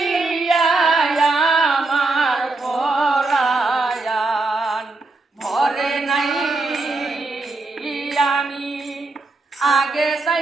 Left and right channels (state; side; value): quieter; left; 3.4 dB